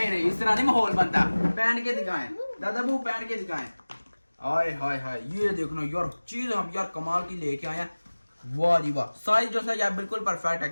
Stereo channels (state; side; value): inverted; both; correlation -1.00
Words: नहीं इस तरह नहीं माहौल बनता, पहन के दिखाएं दादाबू, पहन के दिखाएं। हाय हाय हाय, ये देखना यार चीज हम यार कमाल की लेके आए हैं। वाह जी वाह, साइज जो सा यार बिल्कुल परफेक्ट है,